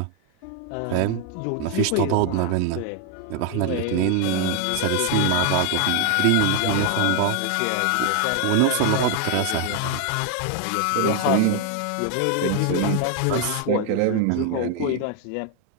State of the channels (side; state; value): both; different; correlation 0.01